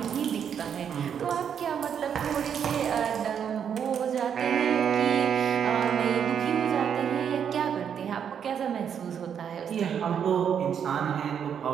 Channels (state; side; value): quieter; left; 8.0 dB